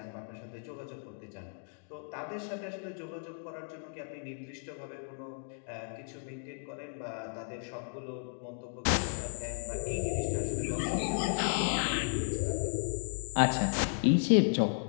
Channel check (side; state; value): right; silent; digital silence